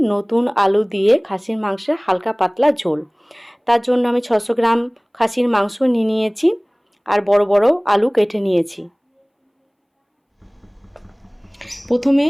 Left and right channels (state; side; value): identical; both; correlation 1.00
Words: নতুন আলু দিয়ে খাসির মাংসের হালকা পাতলা ঝোল। তার জন্য আমি 600 গ্রাম খাসির মাংস নিয়ে নিয়েছি আর বড় বড় আলু কেটে নিয়েছি। প্রথমে